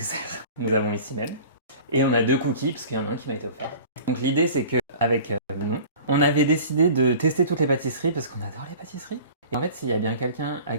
Nous avons ici même. Et on a 2 cookies, parce qu'il y en a un qui m'a été offert. Donc l'idée c'est qu'avec Manon, on avait décidé de tester toutes les pâtisseries parce qu'on adore les pâtisseries. Et en fait, s'il y a bien quelqu'un à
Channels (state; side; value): inverted; both; correlation -0.42